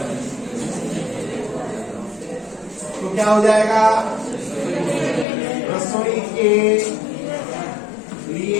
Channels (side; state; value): right; drops out; at 5.2 s